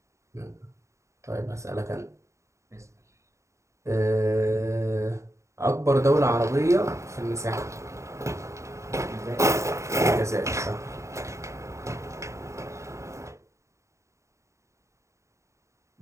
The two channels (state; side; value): late; left; 0.14 ms